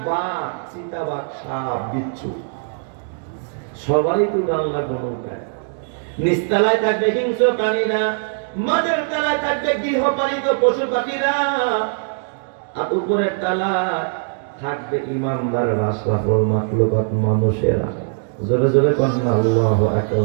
বাঘ, চিতাবাঘ, সাপ, বিচ্ছু, সবাই তো আল্লাহ নৌকায়। নিচতলায় থাকবে হিংস্র প্রাণীরা, মাঝের তলায় থাকবে গৃহপালিত পশু পাখিরা, আর উপরের তলায় থাকবে ইমানদার আশরাফুল মাখলুকাত মানুষেরা। জোরে জোরে কন্যা আল্লাহু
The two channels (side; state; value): left; silent; digital silence